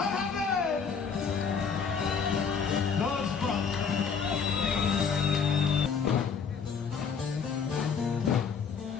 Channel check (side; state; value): right; quieter; 6.1 dB